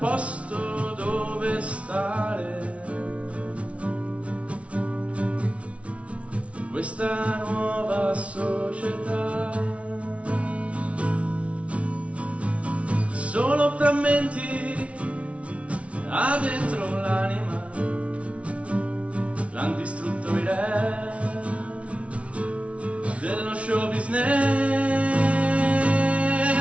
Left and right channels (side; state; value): left; late; 0.063 ms